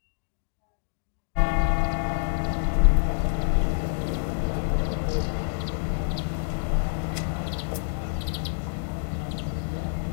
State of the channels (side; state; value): right; silent; digital silence